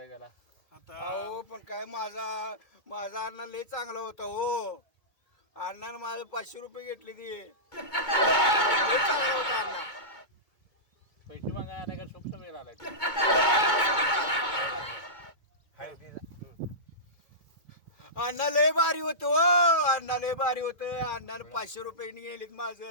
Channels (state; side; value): late; right; 2.2 ms